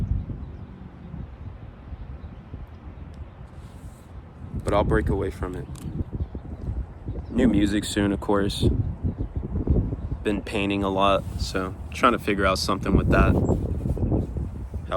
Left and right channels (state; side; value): identical; both; correlation 1.00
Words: But I'll break away from it. New music soon, of course. Been painting a lot, so trying to figure out something with that.